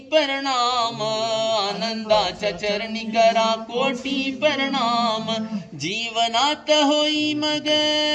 प्रणाम, आनंदाच्या चरणी करा कोटी प्रणाम. जीवनात होई मग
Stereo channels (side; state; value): both; identical; correlation 1.00